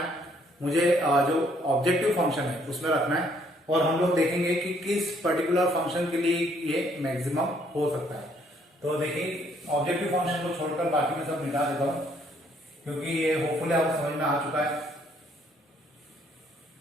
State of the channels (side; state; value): both; normal; correlation 0.66